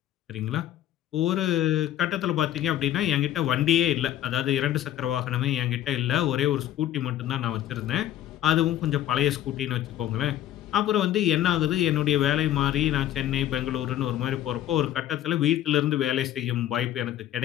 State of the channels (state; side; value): quieter; right; 12.3 dB